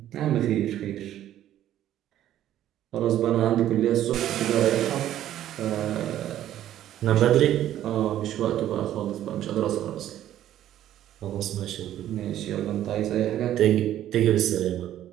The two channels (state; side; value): quieter; left; 12.2 dB